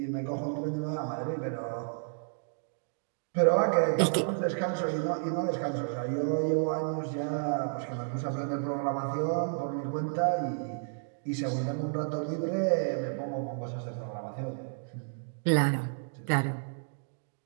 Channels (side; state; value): left; silent; digital silence